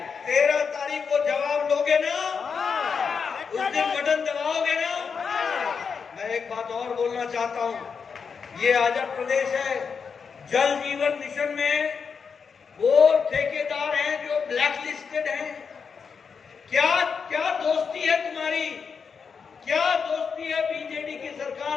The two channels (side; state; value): right; quieter; 5.9 dB